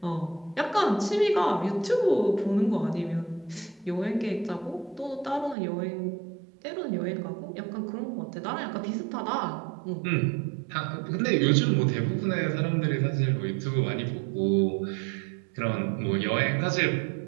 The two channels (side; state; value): left; drops out; at 5.6 s